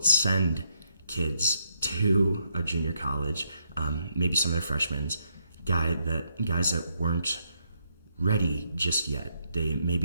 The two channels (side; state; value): both; inverted; correlation -0.75